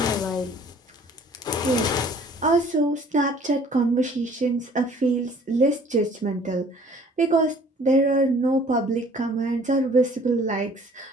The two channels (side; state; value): both; normal; correlation 0.54